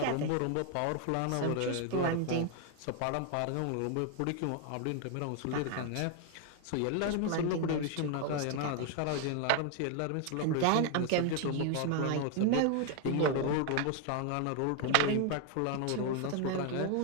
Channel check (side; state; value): both; different; correlation 0.01